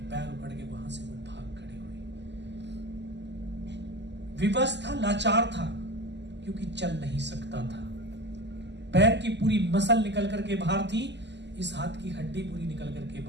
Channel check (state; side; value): late; left; 0.51 ms